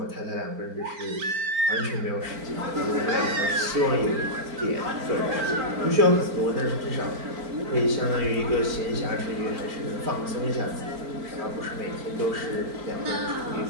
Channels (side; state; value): left; late; 4.4 ms